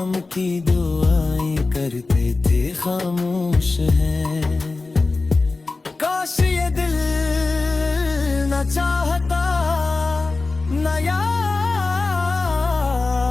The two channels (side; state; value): right; quieter; 3.6 dB